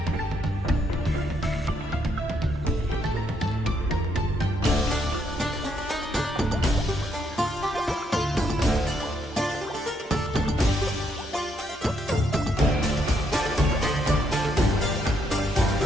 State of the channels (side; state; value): both; normal; correlation 0.74